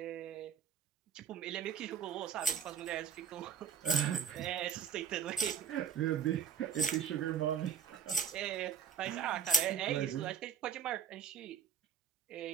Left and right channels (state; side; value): quieter; left; 7.4 dB